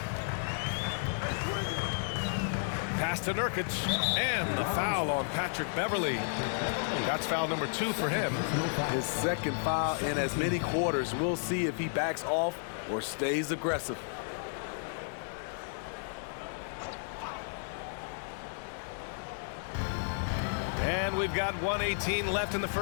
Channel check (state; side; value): silent; right; 56 dB below the other